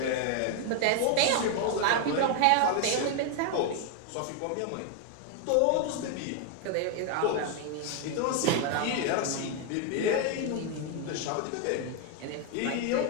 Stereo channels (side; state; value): both; different; correlation 0.01